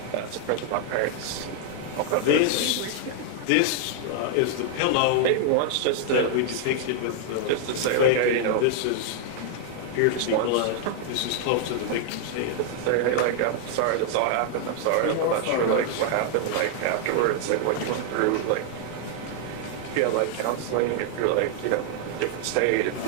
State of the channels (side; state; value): both; different; correlation 0.00